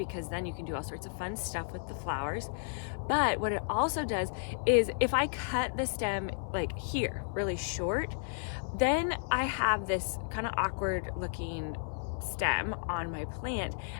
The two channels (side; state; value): right; silent; 56 dB below the other